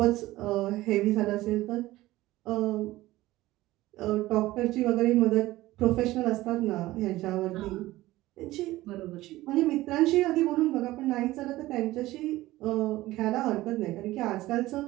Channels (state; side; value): quieter; left; 17.3 dB